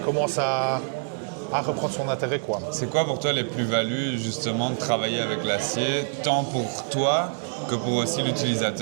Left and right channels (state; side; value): silent; left; digital silence